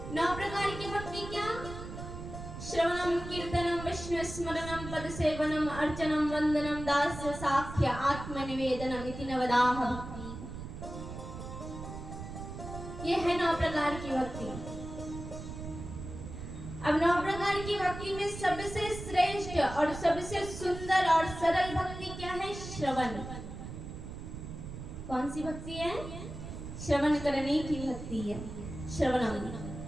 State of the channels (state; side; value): noise; right; rumble, 9 dB below the sound